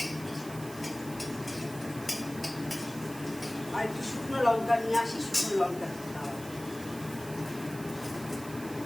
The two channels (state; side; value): noise; right; hiss, 15 dB below the sound